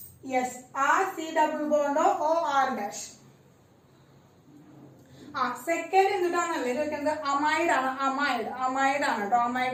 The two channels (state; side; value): identical; both; correlation 1.00